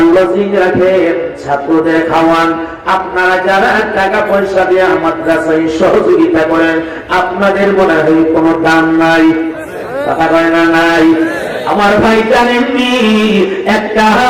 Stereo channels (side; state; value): both; identical; correlation 1.00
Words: লজিং রাখেন, ছাত্রদের খাওয়ান, আপনারা যারা টাকা পয়সা দিয়ে মাদ্রাসায় সহযোগিতা করেন, আপনাদের মনে হয় কোনো দাম নাই? কথা কয় না নাই? আমার ভাই জানেননি, একটা